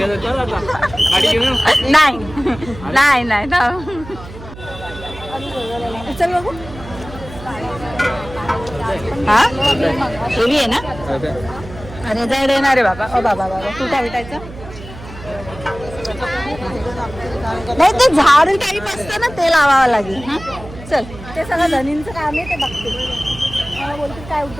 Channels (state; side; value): noise; right; hum, 15 dB below the sound